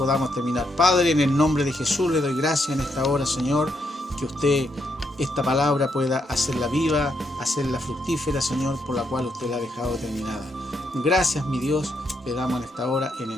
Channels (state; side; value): normal; both; correlation 0.78